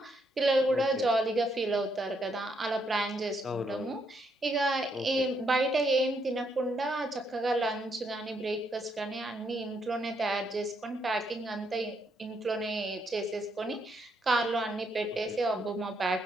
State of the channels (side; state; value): both; normal; correlation 0.76